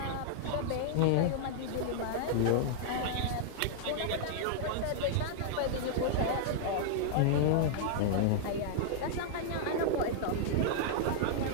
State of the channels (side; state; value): both; different; correlation -0.01